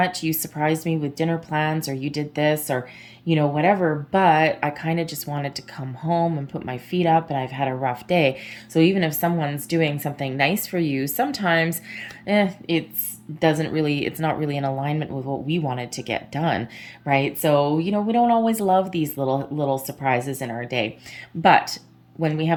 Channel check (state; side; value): identical; both; correlation 1.00